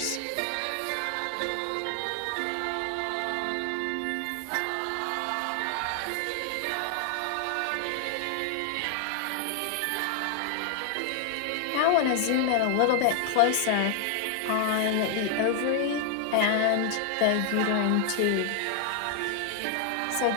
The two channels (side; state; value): both; different; correlation 0.00